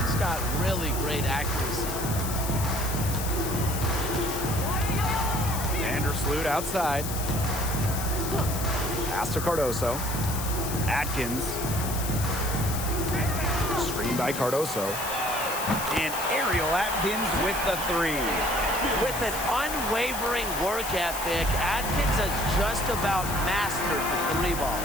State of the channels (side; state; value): left; noise; hiss, 6 dB below the sound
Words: got really great accuracy. Vandersloot outside. Pass to Cardoso. Atkins. Screen by Cardoso. And Ariel Atkins with the three. With an unwavering work ethic, Atkins has just about mastered the three ball.